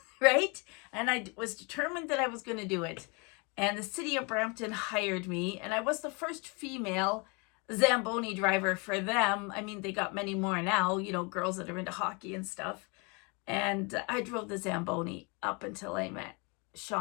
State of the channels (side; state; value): right; quieter; 31.0 dB